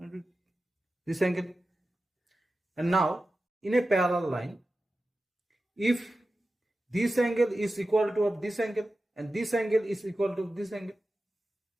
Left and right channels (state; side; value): normal; both; correlation 0.93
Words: this angle. And now in a parallel line, if this angle is equal to of this angle and this angle is equal to this angle,